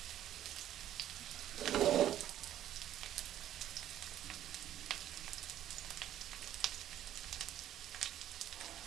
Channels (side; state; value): left; quieter; 11.8 dB